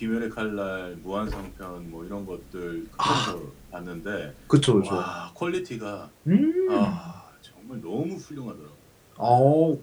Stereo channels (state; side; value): identical; both; correlation 1.00